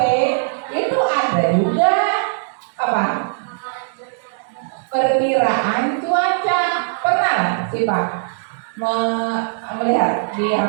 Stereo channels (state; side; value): silent; left; digital silence